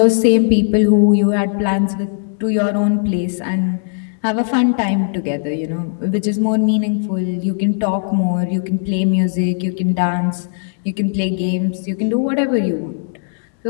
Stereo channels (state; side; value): silent; right; digital silence